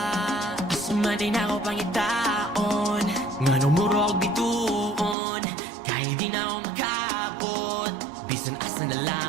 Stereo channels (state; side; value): drops out; left; at 5.2 s